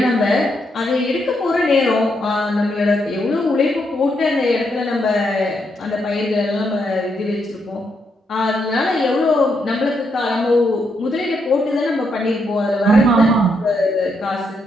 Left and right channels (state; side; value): normal; both; correlation 0.79